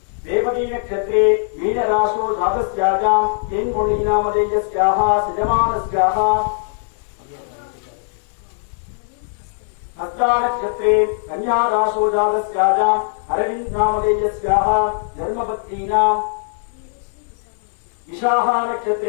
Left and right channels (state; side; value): silent; right; 65 dB below the other